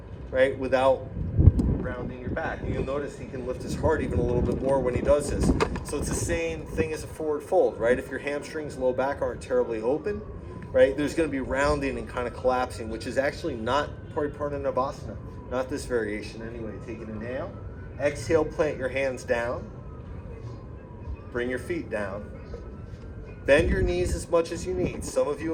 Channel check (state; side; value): identical; both; correlation 1.00